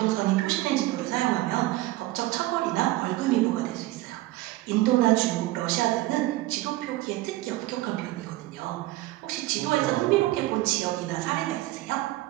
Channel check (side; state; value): left; quieter; 17.7 dB